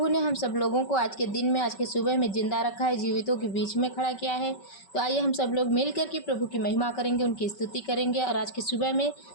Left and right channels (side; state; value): right; late; 5.3 ms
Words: ने हम सब लोगों को आज के दिन में, आज के सुबह में जिंदा रखा है, जीवितों के बीच में खड़ा किया है। तो आइए हम सब लोग मिल करके प्रभु की महिमा करेंगे, उनकी स्तुति करेंगे। और आज के सुबह में